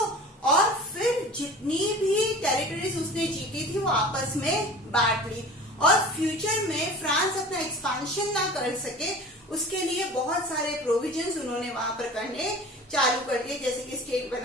और फिर जितनी भी टेरिटरीज उसने जीती थी वो आपस में बांट ली, और फ्यूचर में फ्रांस अपना एक्सपांशन ना कर सके उसके लिए बहुत सारे प्रोविजंस उन्होंने वहां पर करने चालू कर दिए, जैसे कि स्टेट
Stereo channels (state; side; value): normal; both; correlation 0.39